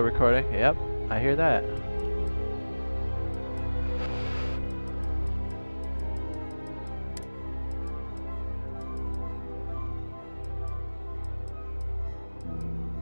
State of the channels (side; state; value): both; inverted; correlation -1.00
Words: Yep, I hear that.